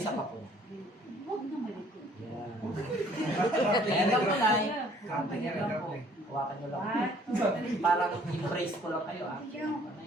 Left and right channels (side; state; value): both; normal; correlation 0.58